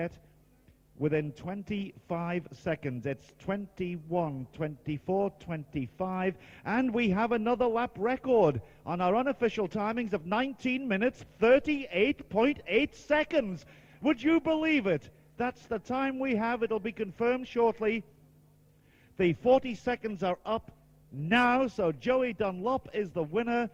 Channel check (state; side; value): identical; both; correlation 1.00